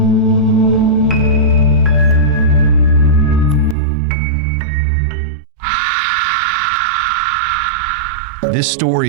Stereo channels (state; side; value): drops out; left; at 3.8 s